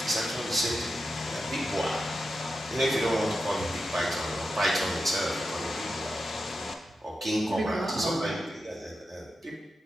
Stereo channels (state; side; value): normal; both; correlation 0.89